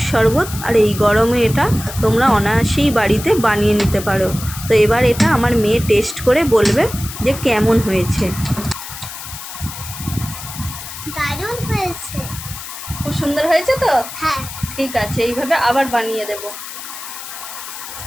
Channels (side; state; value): left; noise; hiss, 11 dB below the sound